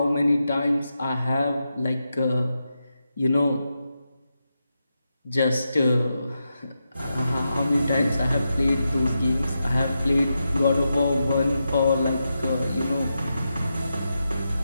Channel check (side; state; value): both; inverted; correlation -0.87